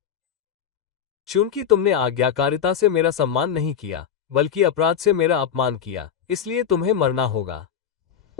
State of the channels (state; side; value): quieter; right; 8.3 dB